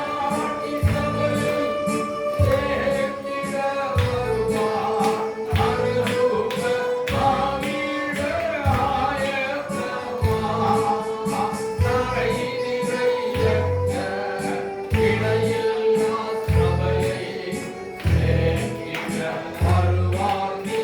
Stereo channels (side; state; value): both; identical; correlation 1.00